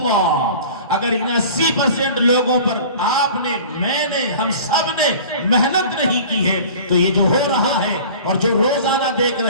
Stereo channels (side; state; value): both; inverted; correlation -0.42